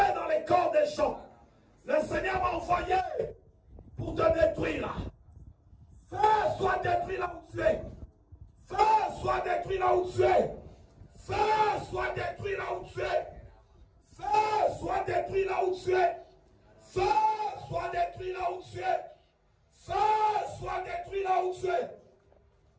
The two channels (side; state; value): both; identical; correlation 1.00